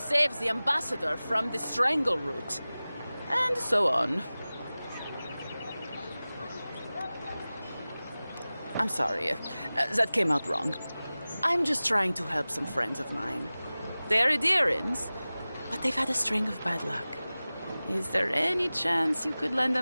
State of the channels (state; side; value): inverted; both; correlation -0.97